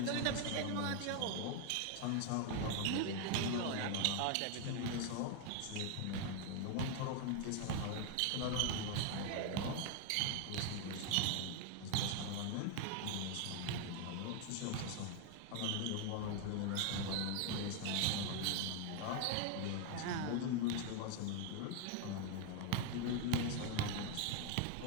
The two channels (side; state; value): both; different; correlation 0.01